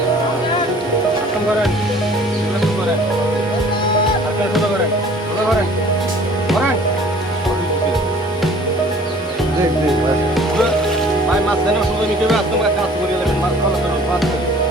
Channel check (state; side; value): normal; both; correlation 0.51